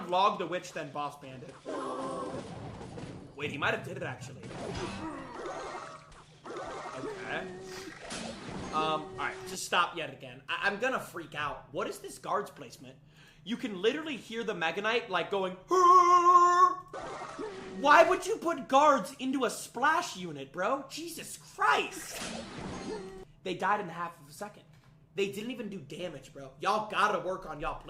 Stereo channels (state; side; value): identical; both; correlation 1.00